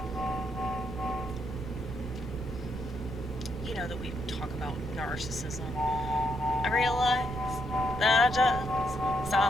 You know that we talk about narcissism. I realize that I just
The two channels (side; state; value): right; noise; rumble, 8 dB below the sound